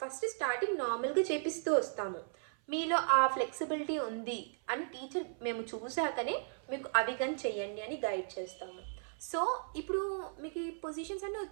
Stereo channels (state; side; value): silent; left; 54 dB below the other